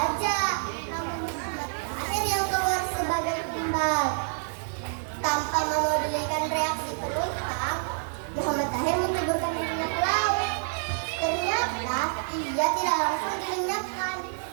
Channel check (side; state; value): left; silent; 60 dB below the other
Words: nama Muhammad Tahir yang keluar sebagai tumbal. Tanpa memedulikan reaksi penumpang, Muhammad Tahir menceburkan dirinya ke laut. Ternyata ia tidak langsung dilenyapkan.